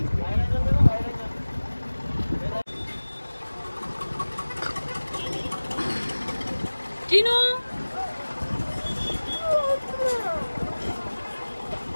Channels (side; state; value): both; inverted; correlation -1.00